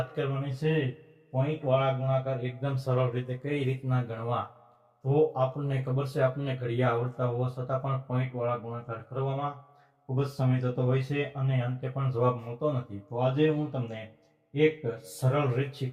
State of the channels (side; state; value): both; identical; correlation 1.00